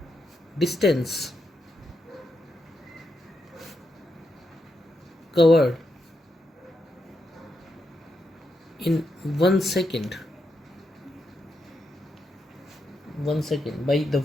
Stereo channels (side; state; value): both; normal; correlation 0.83